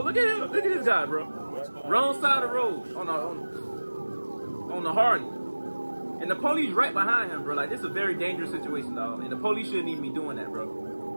at him. Look at this guy, bro. Wrong side of the road on the Harley. And the police right behind him, bro. Like, this is a very dangerous situation, dog. And the police shouldn't even be doing that,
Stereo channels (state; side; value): inverted; both; correlation -1.00